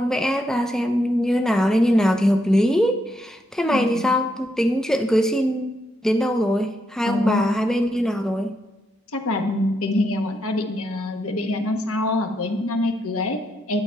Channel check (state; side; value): normal; both; correlation 0.80